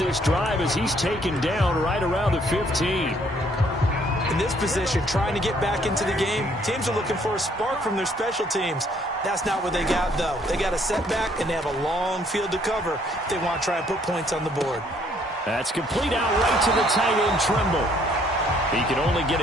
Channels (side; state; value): both; normal; correlation 0.65